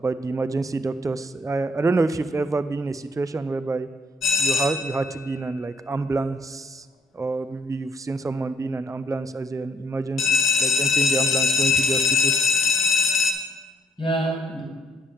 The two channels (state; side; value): normal; both; correlation 0.69